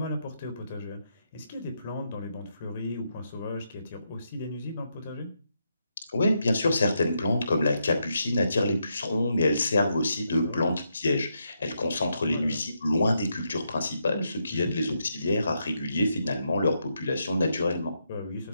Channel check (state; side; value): inverted; both; correlation -0.81